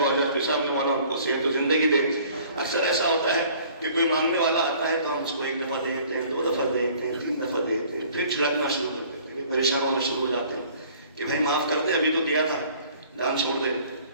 بہت جاتی صاحب نے، مولا ان کو صحت و زندگی دے۔ اکثر ایسا ہوتا ہے کہ کوئی مانگنے والا آتا ہے تو ہم اس کو 1 دفعہ دیتے ہیں، 2 دفعہ دیتے ہیں، 3 دفعہ دیتے ہیں، پھر چھڑکنا شروع کرتے ہیں، پریشان ہونا شروع ہو جاتے ہیں کہ بھائی معاف کر دے، ابھی تو دیا تھا، دان چھوڑ دے۔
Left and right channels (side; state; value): both; inverted; correlation -0.53